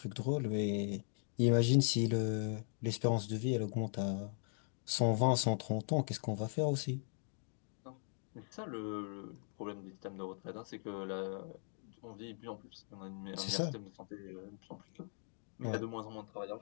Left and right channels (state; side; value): silent; right; 52 dB below the other